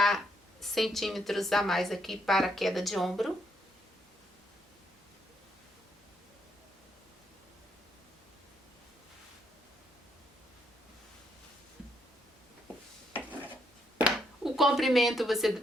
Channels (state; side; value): normal; both; correlation 0.75